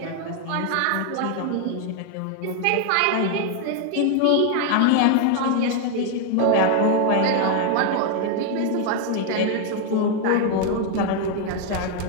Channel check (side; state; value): both; different; correlation 0.01